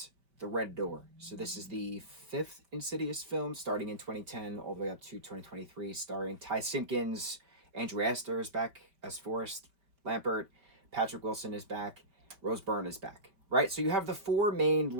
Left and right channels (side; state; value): left; late; 5.1 ms